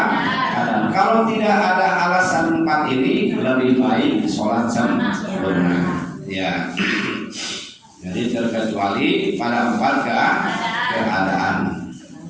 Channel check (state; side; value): identical; both; correlation 1.00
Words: Kalau tidak ada alasan 4 ini, lebih baik sholat sempurna. Ya. Jadi terkecuali pada 4 keadaan.